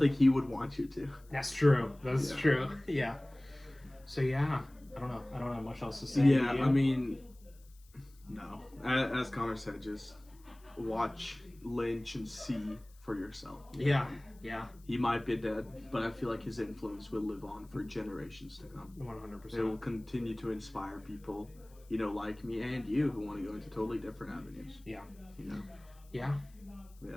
he would want you to. That's true. That's true. Yeah. So yeah. I don't know. I don't have much else to say. Yeah, I mean, no. As Connor said, just watch Lynch and see for yourself. Yeah. He might be dead, but I feel like his influence will live on for generations to come. 100%. It will continue to inspire people, like me and you, who want to go into totally different avenues. Yeah. Yeah.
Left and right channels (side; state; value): left; noise; hiss, 29 dB below the sound